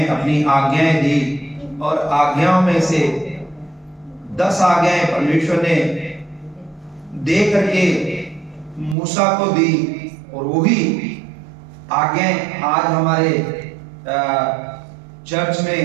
अपनी आज्ञाएं दी और आज्ञाओं में से 10 आज्ञाएं परमेश्वर ने दे करके मूसा को दी, और वही आज्ञाएं आज हमारे चर्च में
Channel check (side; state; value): left; drops out; at 9.0 s